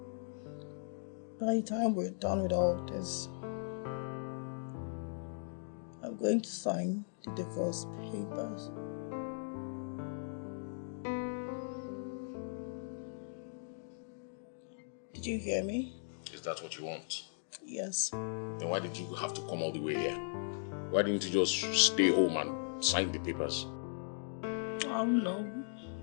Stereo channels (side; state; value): right; silent; digital silence